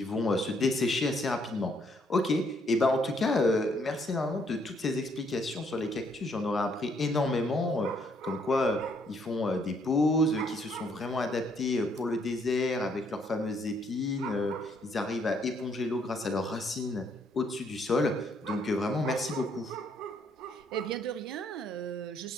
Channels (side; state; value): both; normal; correlation 0.69